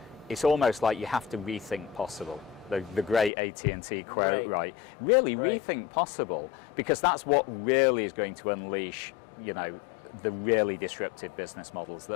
it's almost like you have to rethink possible. The great AT&T quote, right? Really rethink possible, because that's what really is going to unleash, the really disruptive business models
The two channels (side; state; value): right; drops out; at 3.3 s